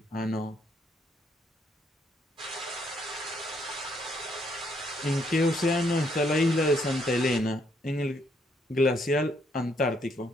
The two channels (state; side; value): normal; both; correlation 0.72